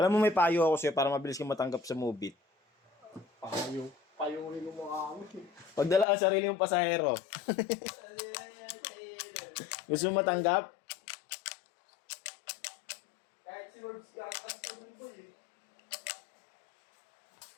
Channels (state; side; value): drops out; right; at 6.1 s